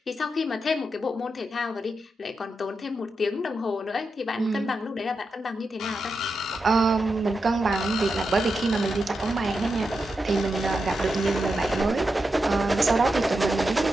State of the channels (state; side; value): normal; both; correlation 0.87